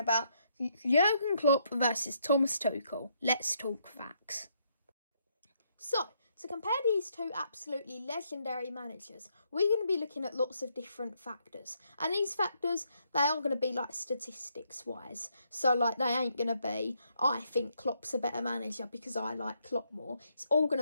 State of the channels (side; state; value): both; inverted; correlation -0.75